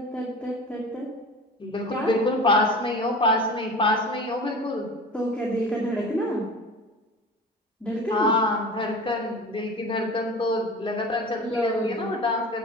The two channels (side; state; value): both; normal; correlation 0.35